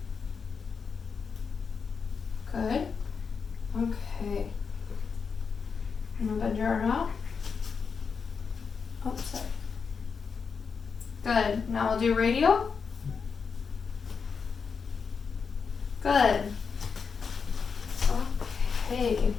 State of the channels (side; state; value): right; quieter; 5.7 dB